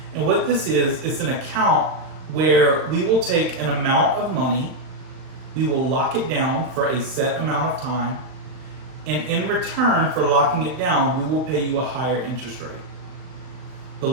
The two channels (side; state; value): left; late; 39 ms